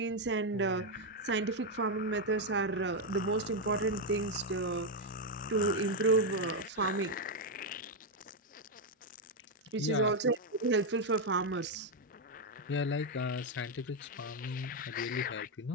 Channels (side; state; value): both; normal; correlation 0.03